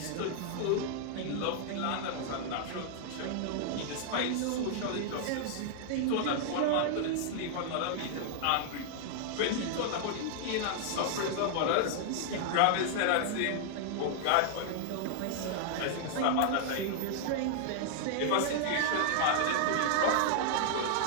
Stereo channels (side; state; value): both; different; correlation -0.01